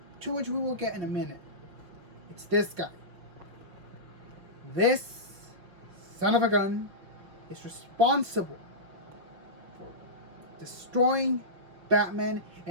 to which we will get in a minute. It's this guy. This son of a gun is responsible for destroying Batman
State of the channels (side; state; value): left; late; 5.4 ms